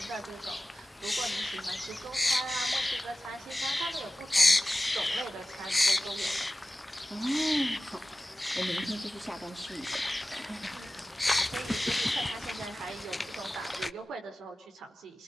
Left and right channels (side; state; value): both; normal; correlation 0.96